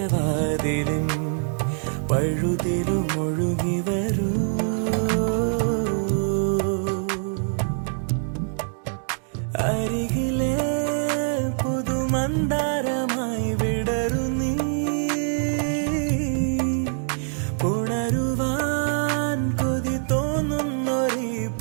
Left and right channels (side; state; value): left; silent; digital silence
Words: പഴുതിലും ഒഴുകി വരൂ. അരികിലെ പുതുമന്ദാരമായി വിടരു നീ, ഉണരുവാൻ കൊതി തോന്നുന്നൊരീ